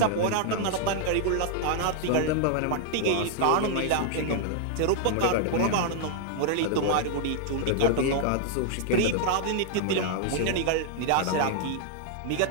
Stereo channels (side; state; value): both; different; correlation 0.00